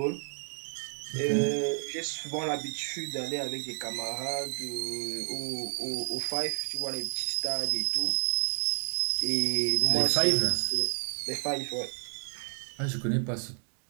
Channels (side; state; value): left; silent; digital silence